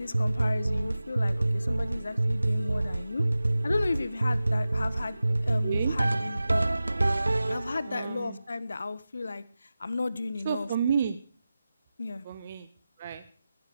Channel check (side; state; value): both; inverted; correlation -0.94